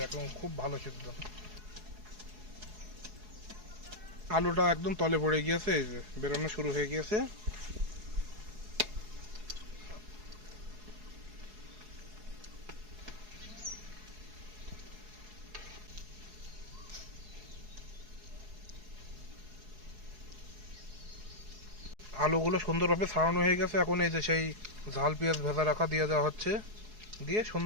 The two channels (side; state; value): left; late; 4.7 ms